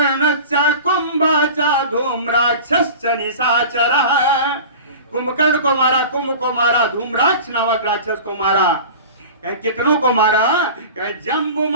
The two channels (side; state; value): both; inverted; correlation -0.36